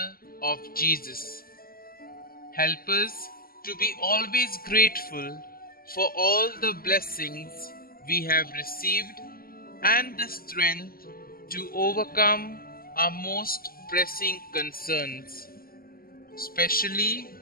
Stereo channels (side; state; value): right; late; 0.42 ms